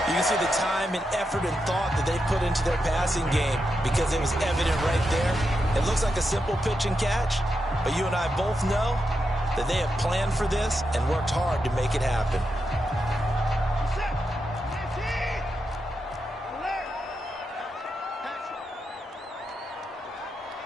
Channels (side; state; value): both; normal; correlation 0.86